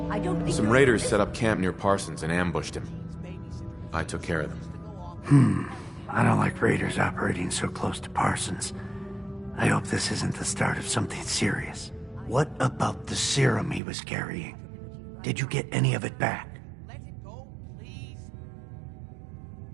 I don't think Some you're- raiders set up camp near Parsons and ambushed him. I took care of them. I don't like raiders operating so close to Parsons. I hope this isn't the start of something serious. What about the serum he was carrying? Did you get any of it back? Let it go, please.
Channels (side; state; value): left; drops out; at 13.8 s